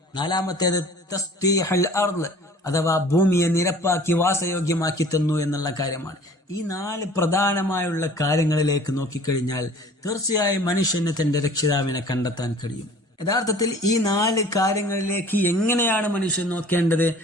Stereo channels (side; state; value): both; normal; correlation 0.48